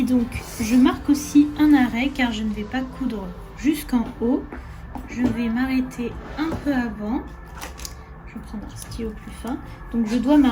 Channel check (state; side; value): identical; both; correlation 1.00